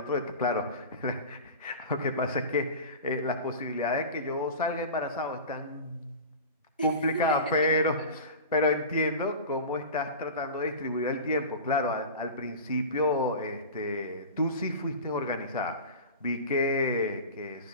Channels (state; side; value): inverted; both; correlation -0.32